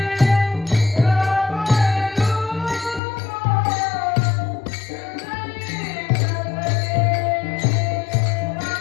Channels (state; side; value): drops out; right; at 3.0 s